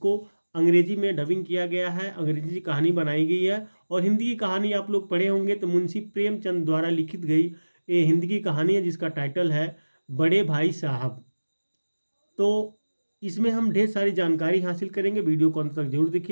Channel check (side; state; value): both; inverted; correlation -1.00